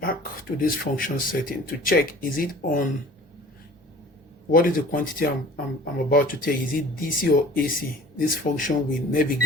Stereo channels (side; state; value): both; normal; correlation 0.46